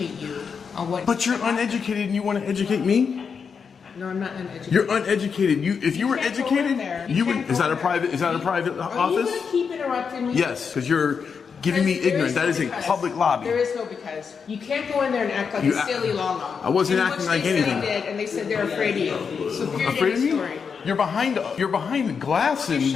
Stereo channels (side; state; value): right; quieter; 6.1 dB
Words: you on what. But you're uneducated and you want to educate me? No, I'm not uneducated. You're uneducated. If you were educated, you would. Is that a private Are you office? gonna keep interrupting me? Yes, because you're giving me ignorant. That is a public lobby. There is no because. You can't go in there and act like You a act- silly Lala. I wasn't You know acting what like they said anything. they did, and they said they're afraid of you. So period Afraid of end me? story. You're behind the glass and Shoving